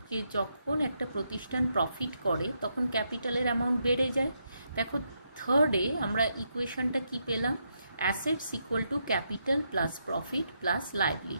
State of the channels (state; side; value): inverted; both; correlation -0.80